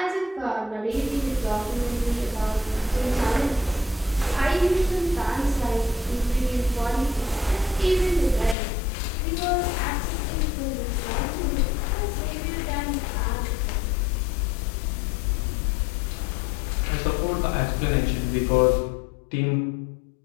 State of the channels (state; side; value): drops out; right; at 8.6 s